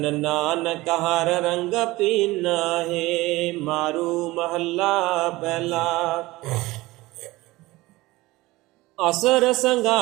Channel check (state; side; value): quieter; left; 19.9 dB